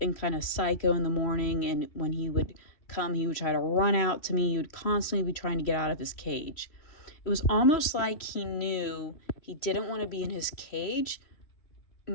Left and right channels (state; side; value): late; right; 3.1 ms